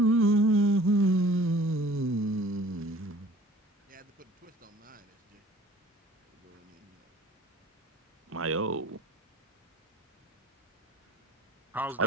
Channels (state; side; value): normal; both; correlation 0.50